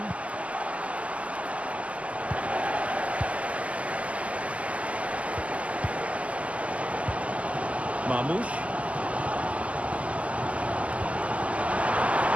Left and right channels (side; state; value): left; late; 0.064 ms